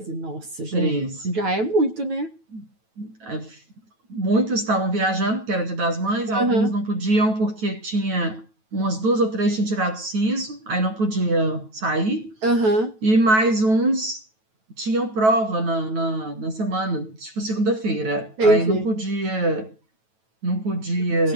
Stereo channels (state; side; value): late; left; 9.2 ms